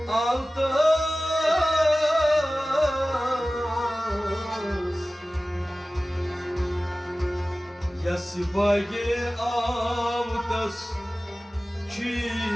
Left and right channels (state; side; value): normal; both; correlation 0.97